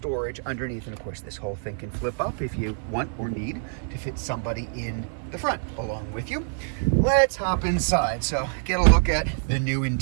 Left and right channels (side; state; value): left; silent; 61 dB below the other